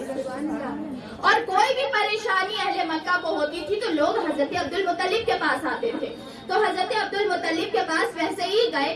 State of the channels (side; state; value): both; identical; correlation 1.00